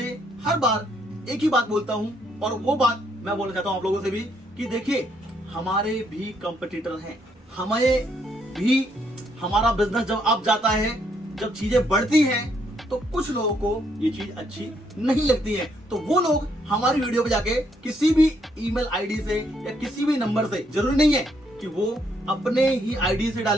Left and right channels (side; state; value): both; normal; correlation 0.72